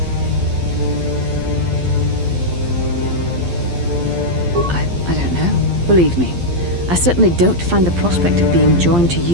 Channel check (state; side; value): late; left; 12 ms